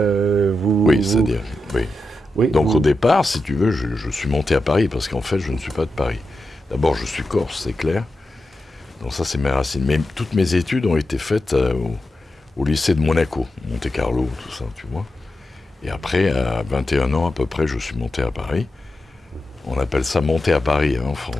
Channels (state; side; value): normal; both; correlation 0.90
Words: oui. Donc au départ, si tu veux, je suis monté à Paris parce qu'en fait, je ne suis pas de Paris. D'abord, je suis corse, c'est clair. Donc ça, c'est mes racines. Mais toutes mes études ont été faites au lycée de Monaco, Monte-Carlo, tout ça, tu vois. Et après, à 21 ans à peu près, je suis monté à Paris. On appelle ça monter à Paris en